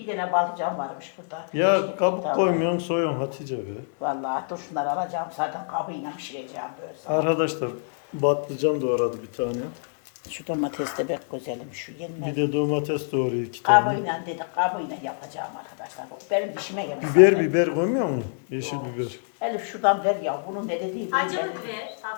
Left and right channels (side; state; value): right; silent; digital silence